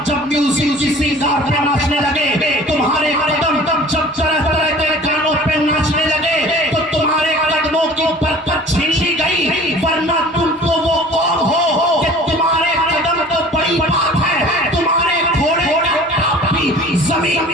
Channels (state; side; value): normal; both; correlation 0.45